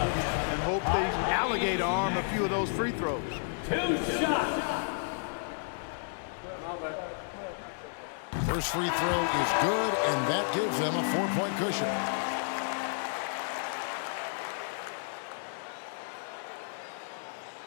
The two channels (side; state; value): right; silent; 57 dB below the other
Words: and hope they alligator arm a few of those free throws. 2 shots. First free throw is good, and that gives them a 4-point cushion.